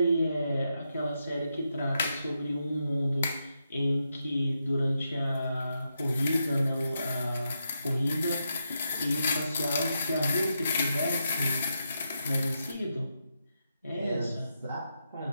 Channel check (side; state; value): both; inverted; correlation -0.84